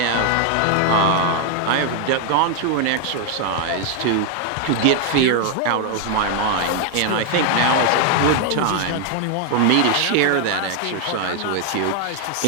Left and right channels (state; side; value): different; both; correlation 0.00